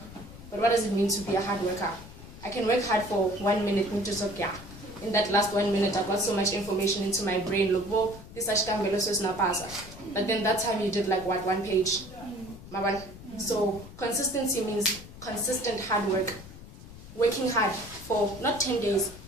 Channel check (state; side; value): noise; left; rumble, 16 dB below the sound